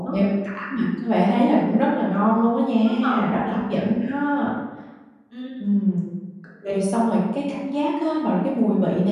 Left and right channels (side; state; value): both; identical; correlation 1.00